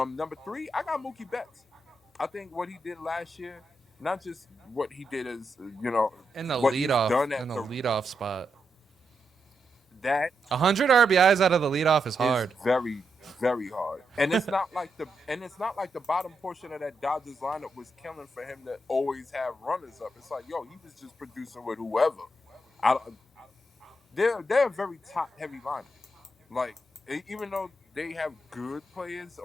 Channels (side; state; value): both; normal; correlation 0.84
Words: 3, I got Mookie Betts. I think what he did last year, not just what he did as In the what he's done at leadoff spot. that 100 RBIs out of the leadoff is hard. is very, very hard. And it's not like the bottom portion of that Dodgers lineup was killing for him to always have runners up. It's like, yo, he was just producing with whoever. They're a very top heavy lineup. Like, even though they have good players